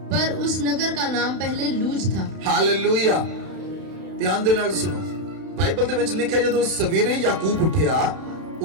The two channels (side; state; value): left; late; 31 ms